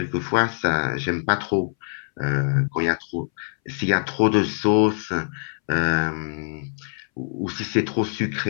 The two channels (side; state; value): right; silent; 62 dB below the other